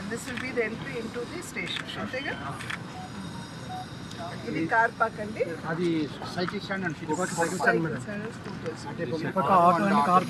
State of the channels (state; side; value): identical; both; correlation 1.00